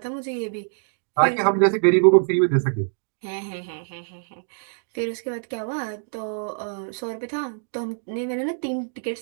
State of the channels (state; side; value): silent; left; digital silence